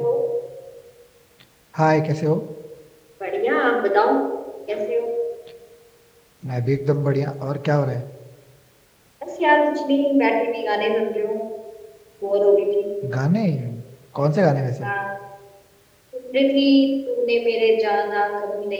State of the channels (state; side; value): identical; both; correlation 1.00